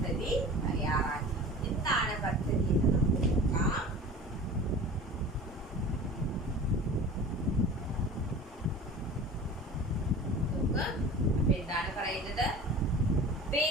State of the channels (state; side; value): normal; both; correlation 0.39